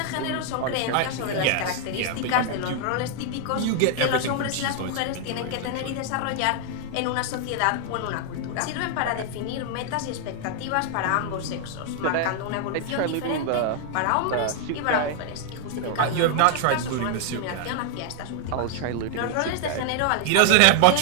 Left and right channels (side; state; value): both; different; correlation 0.00